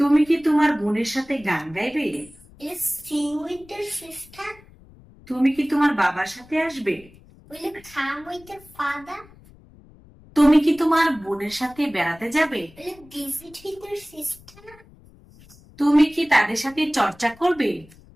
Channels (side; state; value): left; noise; rumble, 24 dB below the sound